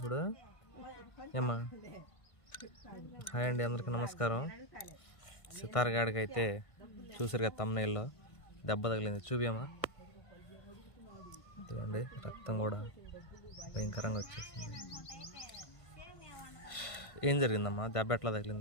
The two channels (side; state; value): right; late; 1.5 ms